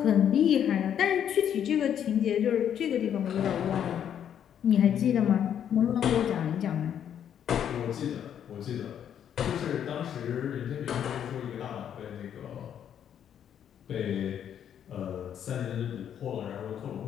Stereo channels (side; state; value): right; quieter; 9.3 dB